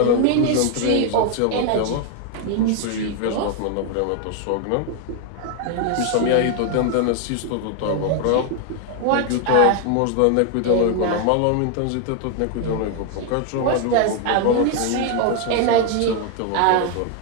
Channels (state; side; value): different; both; correlation 0.00